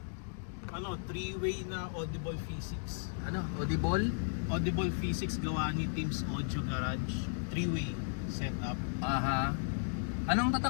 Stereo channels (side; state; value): right; silent; digital silence